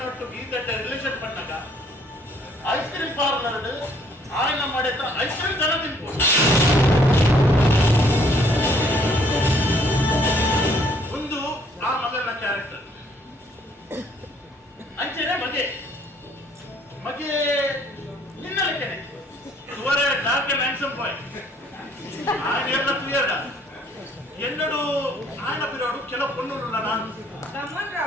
ಒಟ್ಟು ಗೀತಟ್ಟೆ ರಿಲೇಷನ್ ಪಣ್ಣಗ ಐಸ್ ಕ್ರೀಮ್ ಪಾರ್ಲರ್ ಆಯ್ನ ಮಾಡಿದ ಐಸ್ ಕ್ರೀಮ್ ಜನ ತಿನ್ಬೋದು ಒಂದು ಆ ಮಗನ ಕ್ಯಾರೆಕ್ಟರ್ ಅಂಚೆನೆ ಮಗೆ ನಿನ್ನಲಕ್ಕೇನೆ ಇವರೇ ಡಾರ್ಕ್ ಅಂಡ್ ಹ್ಯಾಂಡ್ಸಮ್ ಬಾಯ್ ఆయన ಎಲ್ಲ ಕ್ಲಿಯರ್ ಎನ್ನಡು ఆయన పిరోడు ಕೆಲವು పొన్నులు ನಾನು ಗಮನ್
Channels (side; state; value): both; normal; correlation 0.63